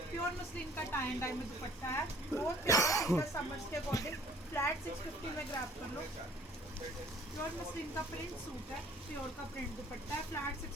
प्योर मसलिन का टाई एंड डाई में दुपट्टा है। बहुत प्यारा सूट है समर्स के अकॉर्डिंग। फ्लैट 650 में ग्रैब कर लो। प्योर मसलिन का प्रिंट सूट है, प्योर का प्रिंट दुपट्टा है। फ्लैट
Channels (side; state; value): both; normal; correlation 0.54